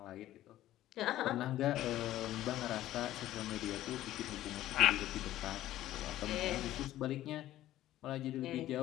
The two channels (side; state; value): right; quieter; 14.0 dB